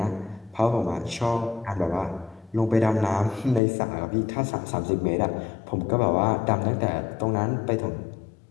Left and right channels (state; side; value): drops out; right; at 3.6 s